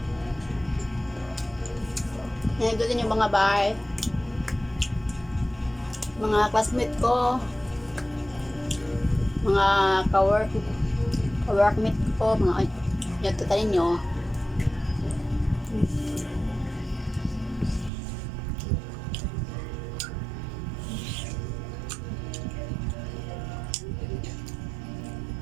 ito din yung mga bahay. Mga classmate ko. Mga ka-workmate ko. Mga yan, ito tayo nyo.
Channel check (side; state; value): left; drops out; at 17.9 s